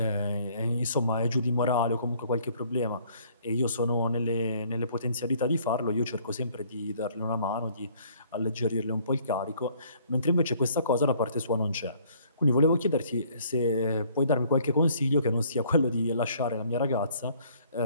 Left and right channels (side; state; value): both; inverted; correlation -0.60